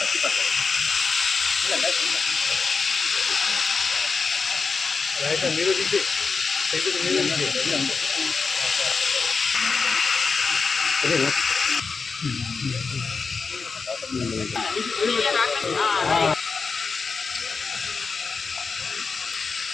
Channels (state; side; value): quieter; right; 4.8 dB